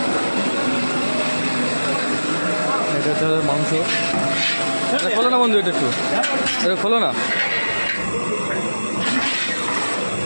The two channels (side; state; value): both; inverted; correlation -1.00